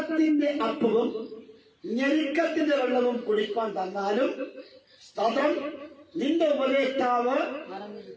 അപ്പവും ഞെരുക്കത്തിന്റെ വെള്ളവും കുടിപ്പാൻ തന്നാലും, സ്തോത്രം, നിന്റെ ഉപദേഷ്ടാവ്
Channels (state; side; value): identical; both; correlation 1.00